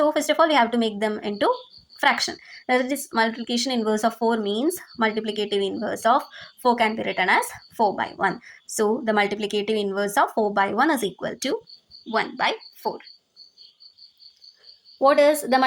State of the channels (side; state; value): both; identical; correlation 1.00